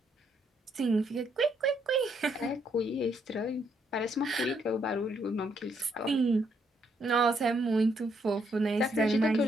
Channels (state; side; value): normal; both; correlation 0.73